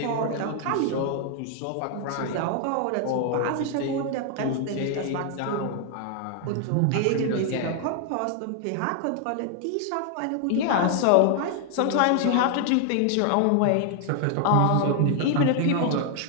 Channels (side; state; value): both; different; correlation 0.00